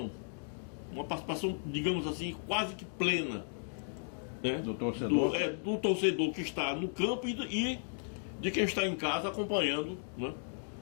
digamos assim, quase que plena, né? Do torcedor. Do torcedor que está no campo e de quem está em casa acompanhando, né?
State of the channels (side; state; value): right; silent; digital silence